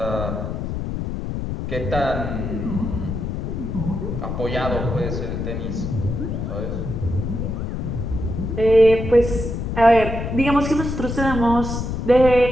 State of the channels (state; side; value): noise; left; rumble, 3 dB below the sound